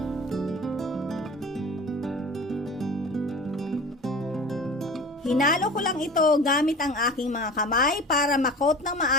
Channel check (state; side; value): normal; both; correlation 0.38